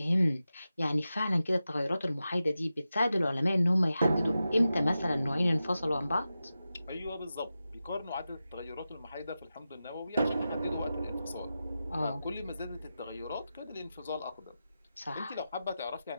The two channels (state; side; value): inverted; both; correlation -0.92